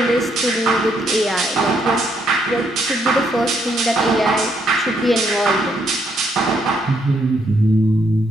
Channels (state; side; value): normal; both; correlation 0.74